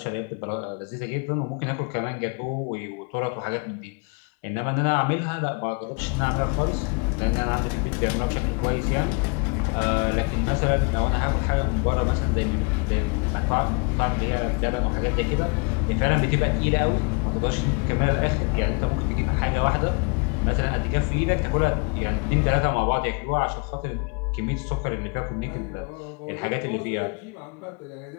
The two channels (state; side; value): quieter; right; 33.5 dB